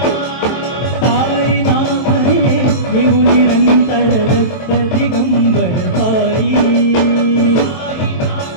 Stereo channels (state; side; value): late; right; 23 ms